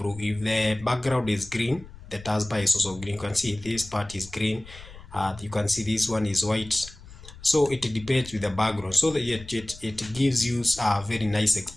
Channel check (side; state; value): left; noise; rumble, 18 dB below the sound